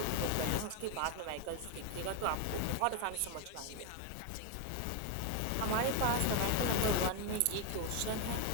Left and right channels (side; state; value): both; different; correlation 0.01